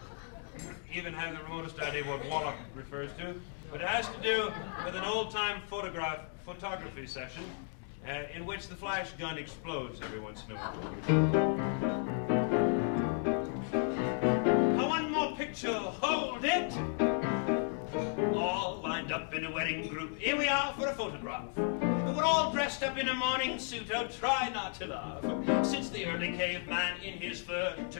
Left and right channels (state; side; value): silent; right; 55 dB below the other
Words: even have the remotest idea what Wallop refers to, but it has to do with an old-time photography session in which the flash gun explodes every once in a while. One more picture, hold it! All lined up in a wedding group. Here we are for a photograph. We're all dressed up in a morning suit. Oh, try not to laugh. Since the early caveman in his fur